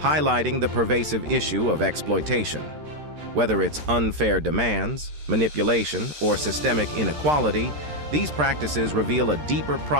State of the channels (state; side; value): late; left; 13 ms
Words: the pervasive issue of exploitation. Whether it's unfair demands, manipulation, or systemic inequality, these practices reveal a deeper